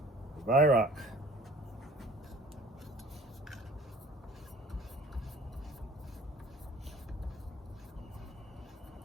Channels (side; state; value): both; normal; correlation 0.49